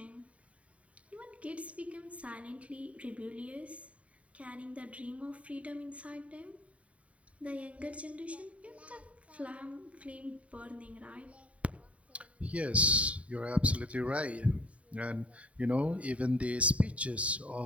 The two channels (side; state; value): left; late; 0.065 ms